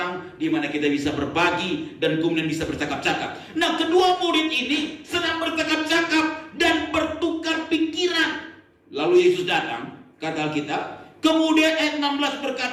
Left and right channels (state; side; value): identical; both; correlation 1.00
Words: di mana kita bisa berbagi dan kemudian bisa bercakap-cakap. Nah, kedua murid ini sedang bercakap-cakap dan bertukar pikiran. Lalu Yesus datang, kata Alkitab. Kemudian ayat 16